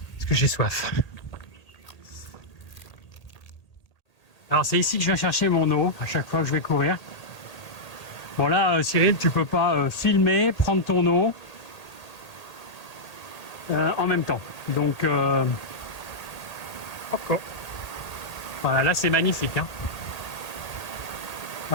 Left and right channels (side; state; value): right; late; 1.8 ms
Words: parce que j'ai soif. Alors c'est ici que je viens chercher mon eau à chaque fois que je vais courir. Bon là, Cyril, tu peux pas filmer, prendre ton eau en même temps. Donc, encore. Voilà, là c'est magnifique, hein.